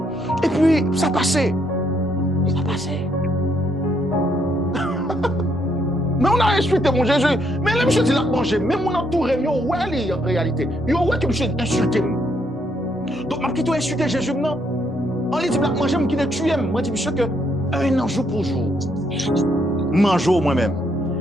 Et puis, ça passait. Ça passait. Mais on a insulté mon Jésus. Mais là, monsieur dit là, manger. Même mon entouré, yo, ouais, en réalité. Yo, ouais, que monsieur insulté. Donc, je vais insulter Jésus maintenant. On lui dit, là, manger, je vais tuer. Moi, je dis, monsieur, que 1 an, jour pour jour, mangeau moi-même.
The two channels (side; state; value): both; normal; correlation 0.73